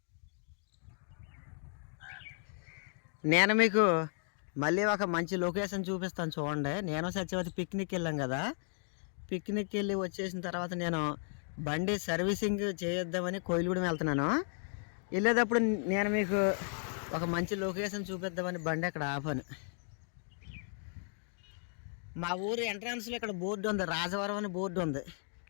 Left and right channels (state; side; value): silent; right; 55 dB below the other